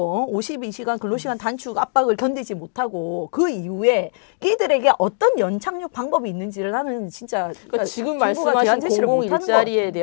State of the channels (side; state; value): right; silent; digital silence